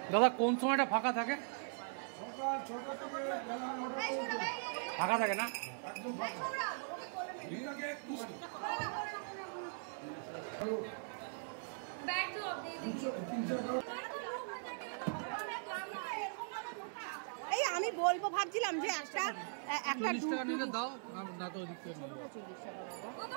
দাদা কোন সময়টা ফাঁকা থাকে? ফাঁকা থাকে না? এই আমি বলবো ভাবছিলাম যে একটা দাও না তো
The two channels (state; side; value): silent; left; 51 dB below the other